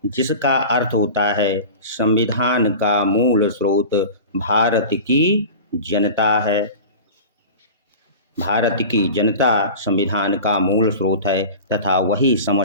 जिसका अर्थ होता है संविधान का मूल स्रोत भारत की जनता है। भारत की जनता संविधान का मूल स्रोत है तथा वही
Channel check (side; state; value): both; inverted; correlation -0.34